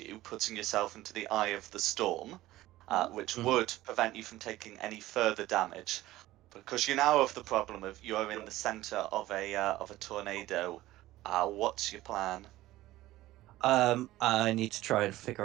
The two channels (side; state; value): left; quieter; 16.3 dB